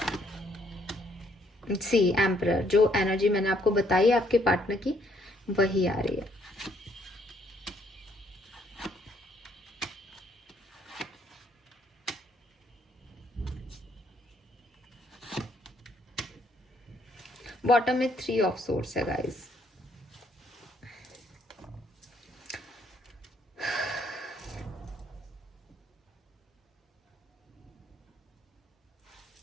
सी एम्परर, जो एनर्जी मैंने आपको बताई आपके पार्टनर की वही आ रही है। बॉटम में 3 ऑफ सोर्ड्स है गाइस।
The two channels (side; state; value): both; normal; correlation 0.68